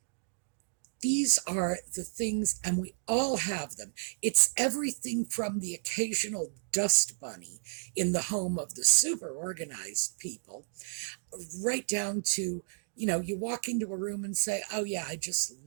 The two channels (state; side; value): silent; left; digital silence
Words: These are the things, and we all have them. It's everything from the occasional dust bunny in the home of the super organized people, right down to, you walk into a room and say, oh yeah, I just